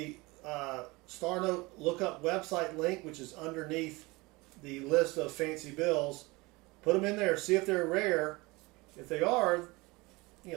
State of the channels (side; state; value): left; quieter; 23.6 dB